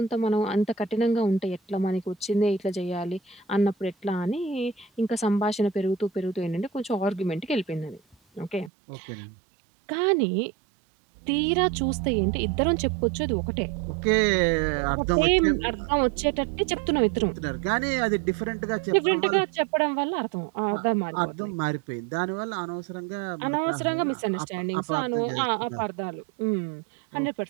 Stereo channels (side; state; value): left; drops out; at 8.7 s